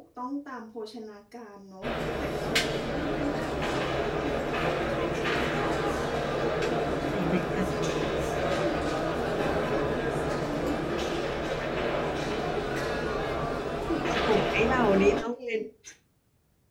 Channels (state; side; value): identical; both; correlation 1.00